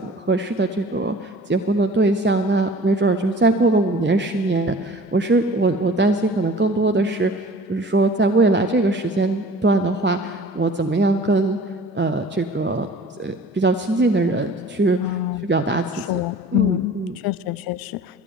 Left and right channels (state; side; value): normal; both; correlation 0.46